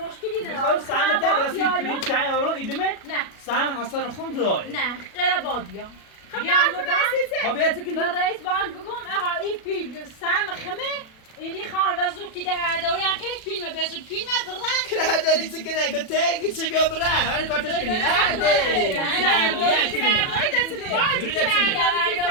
نداره. میخوام سهم تا رسید پرینت چای اورو ایدمت. نه. سهم حسن خون داره. نه غیر بادیا. خب بیاید که به رئیس بانک بگم آقا این پیل سهم خمه اینی خان و زود که در دوری هم که فیلم بزود فیلم برن که داری چه کنه که تگی چه بیا بره هر کارتش کنی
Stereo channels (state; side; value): late; right; 37 ms